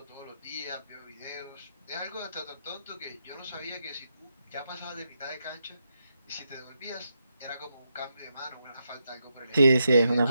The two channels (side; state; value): both; inverted; correlation -0.83